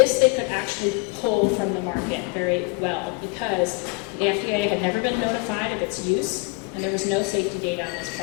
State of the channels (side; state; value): right; quieter; 29.3 dB